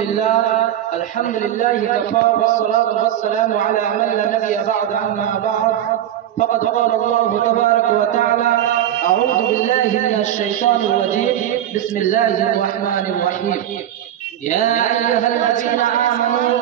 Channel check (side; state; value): left; quieter; 11.4 dB